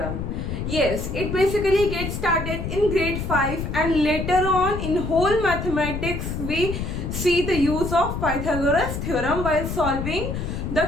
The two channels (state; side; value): noise; left; rumble, 5 dB below the sound